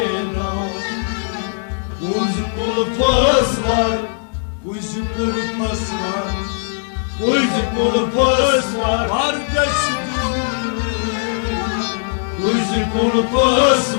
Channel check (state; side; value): silent; right; digital silence